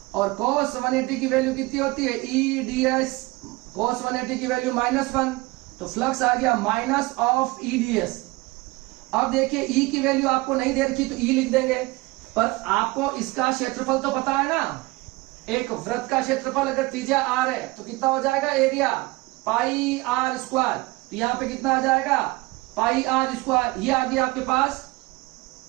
और cos 180 की वैल्यू कितनी होती है? E ds cos 180 की वैल्यू -1। तो फ्लक्स आ गया माइनस ऑफ E ds। अब देखिए E की वैल्यू आपको नहीं दे रखी तो E लिख देंगे, पर आपको इसका क्षेत्रफल तो पता है ना। एक वृत्त का क्षेत्रफल अगर त्रिज्या r है तो कितना हो जाएगा? Area pi r square. तो यहां पे कितना आ जाएगा? पाई r स्क्वायर। ये आ गया आपके पास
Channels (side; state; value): left; quieter; 22.2 dB